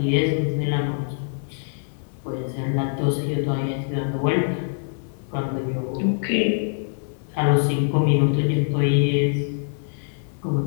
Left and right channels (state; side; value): silent; right; 63 dB below the other